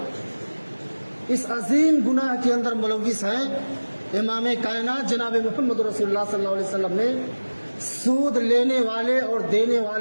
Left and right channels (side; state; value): both; inverted; correlation -1.00